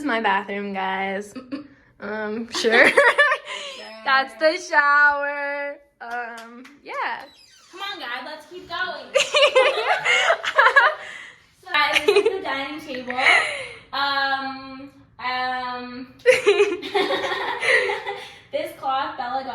my bathroom, guys. Sure. That's the shower. Yeah. Come on, guys. Let's keep going. So, guys, this is the dining table. This cloth Bella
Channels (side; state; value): both; identical; correlation 1.00